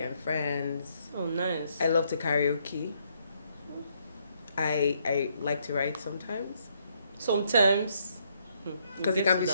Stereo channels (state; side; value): inverted; both; correlation -0.72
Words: friends. Oh, nice. I love to karaoke. I like to write sometimes. Sometimes. Because it